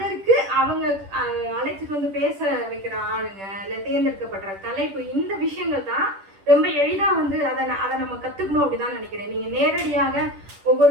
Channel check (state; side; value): late; left; 10 ms